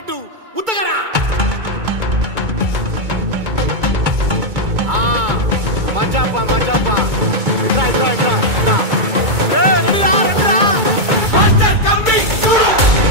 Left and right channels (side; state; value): left; late; 2.2 ms